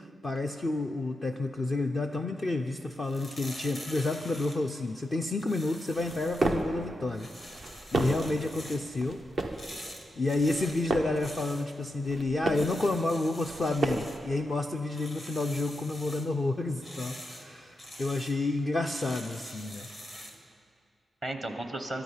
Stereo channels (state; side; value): normal; both; correlation 0.86